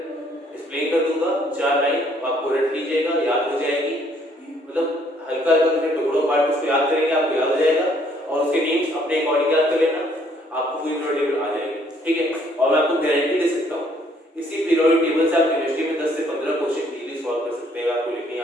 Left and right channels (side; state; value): both; normal; correlation 0.65